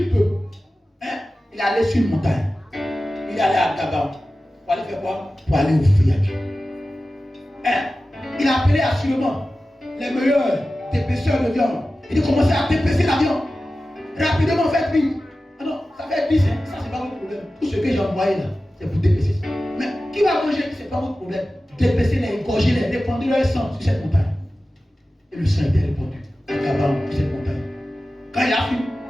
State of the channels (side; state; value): both; normal; correlation 0.95